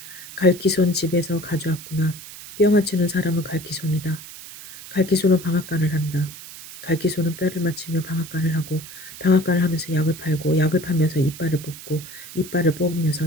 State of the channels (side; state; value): right; noise; hiss, 14 dB below the sound